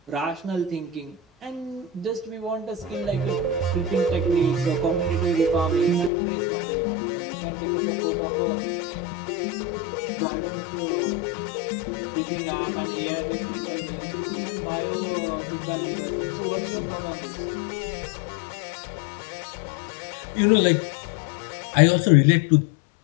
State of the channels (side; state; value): right; drops out; at 6.1 s